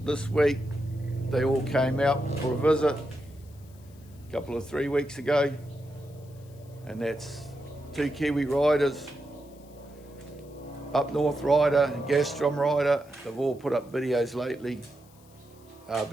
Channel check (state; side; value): noise; left; hiss, 28 dB below the sound